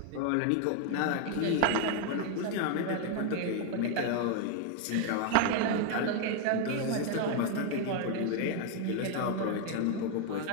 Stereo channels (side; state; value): both; different; correlation 0.00